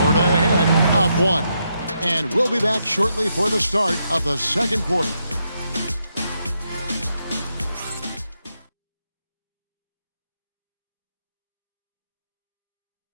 ahead, up 1. And we'll be back shortly for the start of the second quarter.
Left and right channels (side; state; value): both; inverted; correlation -0.81